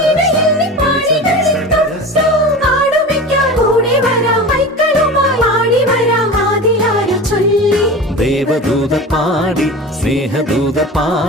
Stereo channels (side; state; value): both; normal; correlation 0.32